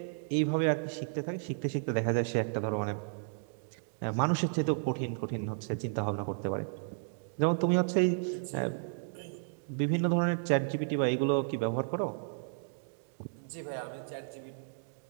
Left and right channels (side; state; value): left; silent; digital silence